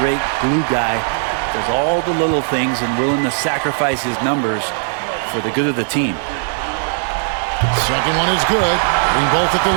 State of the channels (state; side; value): silent; left; digital silence